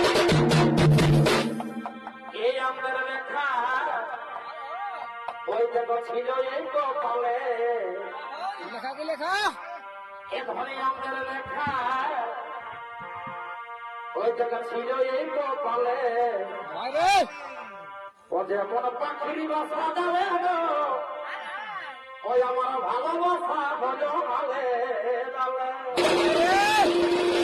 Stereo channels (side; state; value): both; identical; correlation 1.00